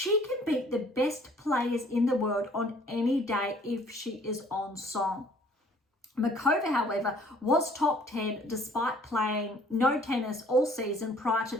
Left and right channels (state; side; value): normal; both; correlation 0.56